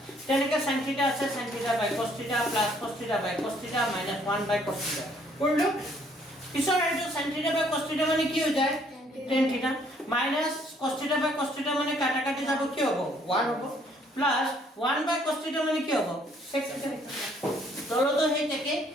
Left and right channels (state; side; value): normal; both; correlation 0.64